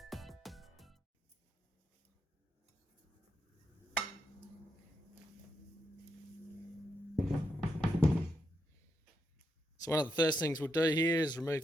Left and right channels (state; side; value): normal; both; correlation 0.82